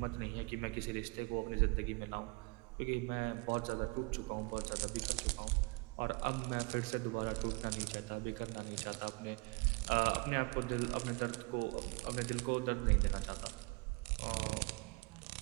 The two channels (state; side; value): quieter; left; 28.3 dB